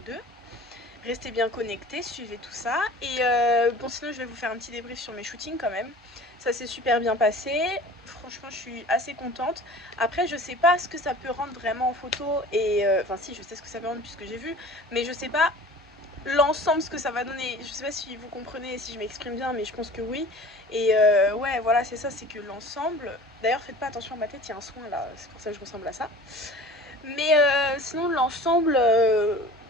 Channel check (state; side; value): normal; both; correlation 0.42